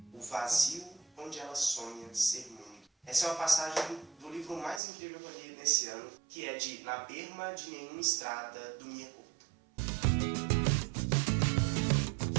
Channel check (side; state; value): left; drops out; at 4.8 s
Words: o vazio onde ela sonha ser mundo. Essa é uma passagem do livro mais incrível que eu li nesse ano, que é de Na Berma de Nenhuma Estrada, do Mia Couto.